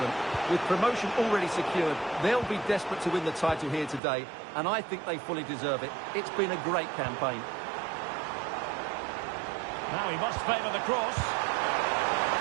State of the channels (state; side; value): drops out; left; at 4.0 s